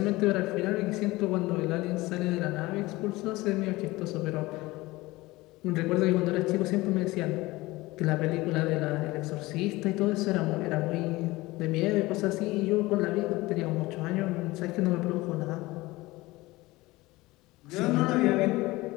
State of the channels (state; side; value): quieter; right; 20.2 dB